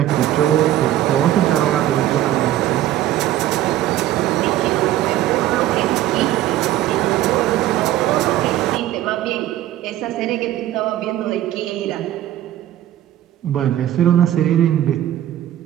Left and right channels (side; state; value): left; quieter; 13.1 dB